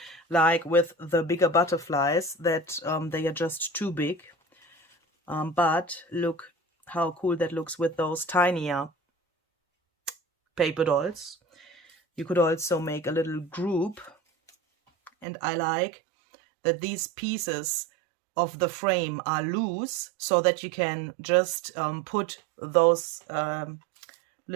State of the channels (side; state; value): left; drops out; at 15.2 s